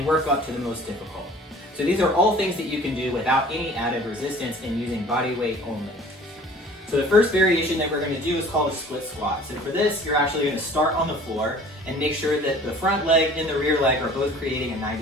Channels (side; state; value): both; normal; correlation 0.48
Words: work up to the most difficult. So these are all things that you can do without any added resistance and using body weight only. So the first variation that we're going to do is called a split squat. So for this, you're actually going to start on the floor and make sure that the front leg and the rear leg are both creating a